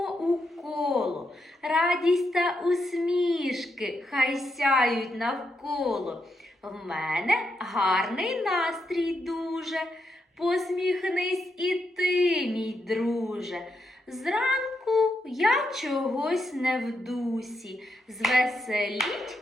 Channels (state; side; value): normal; both; correlation 0.82